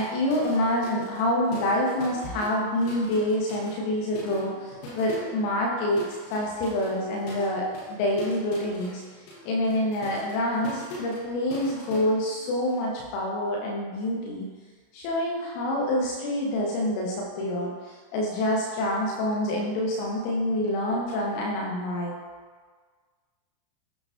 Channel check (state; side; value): late; right; 33 ms